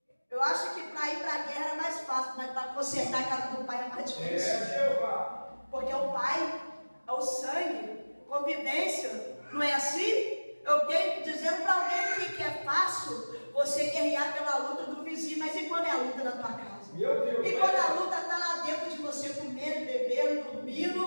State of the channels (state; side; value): inverted; both; correlation -1.00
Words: Eu acho que para ir para a guerra é mais fácil, mas para consertar a casa do pai é mais difícil. É, Jeová. Porque o pai é o sangue, convivência, não é assim? Eu tenho dizendo para alguém que é fácil você guerrear pela luta do vizinho, mas e quando é a luta da tua casa? Meu Deus. E quando a luta está lá dentro de você, comendo, bebendo,